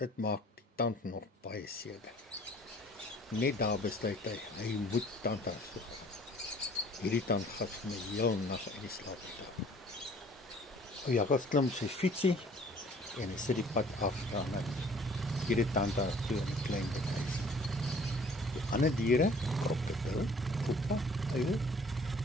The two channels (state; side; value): normal; both; correlation 0.53